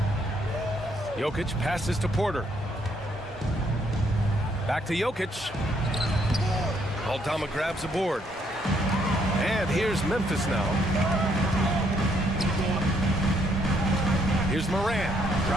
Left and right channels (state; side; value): normal; both; correlation 0.71